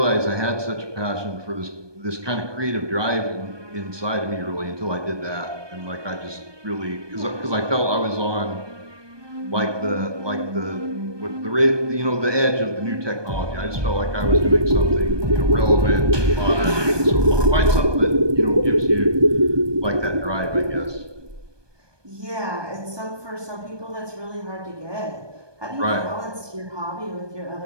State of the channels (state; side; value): late; left; 1.2 ms